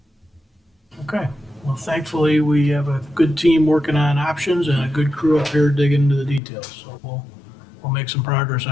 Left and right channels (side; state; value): right; drops out; at 6.4 s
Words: Okay, well, thankfully, we have a good team working on options and a good crew up here digging into the details. So we'll make some progress,